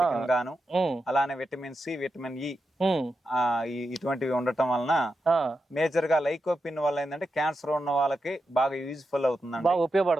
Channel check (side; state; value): both; normal; correlation 0.87